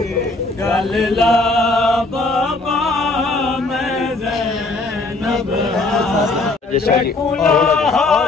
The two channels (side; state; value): right; quieter; 3.2 dB